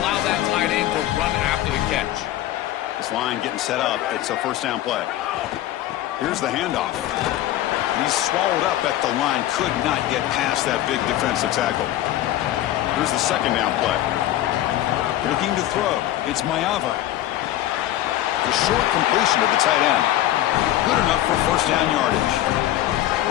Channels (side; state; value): right; quieter; 14.0 dB